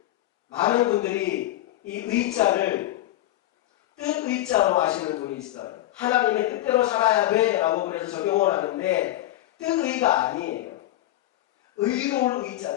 많은 분들이 이 의자를 뜻의자로 하시는 분이 있어요. 하나님의 뜻대로 살아야 돼 라고 그래서 적용을 하는데 뜻의가 아니에요. 의로울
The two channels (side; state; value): right; quieter; 15.1 dB